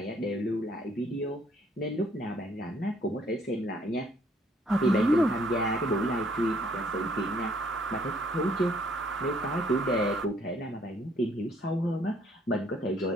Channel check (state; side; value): normal; both; correlation 0.64